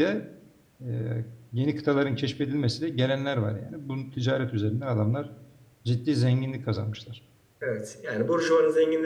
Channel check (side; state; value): both; identical; correlation 1.00